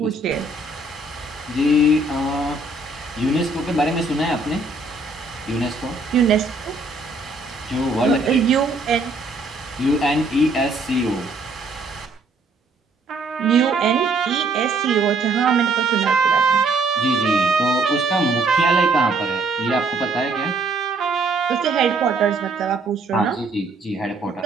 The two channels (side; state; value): left; quieter; 3.2 dB